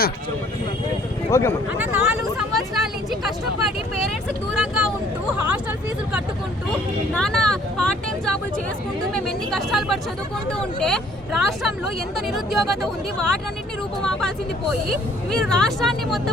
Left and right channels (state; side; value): normal; both; correlation 0.59